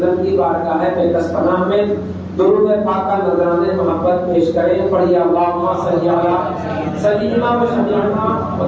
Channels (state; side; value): identical; both; correlation 1.00